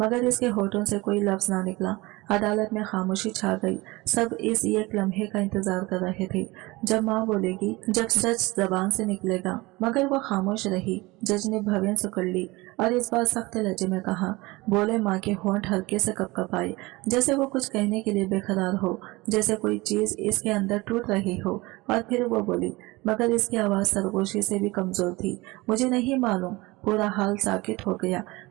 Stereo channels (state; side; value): quieter; left; 22.3 dB